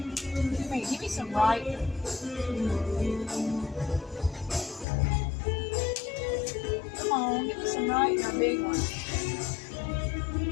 me some right. Come on, give me some right and a big one.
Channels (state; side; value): drops out; right; at 4.9 s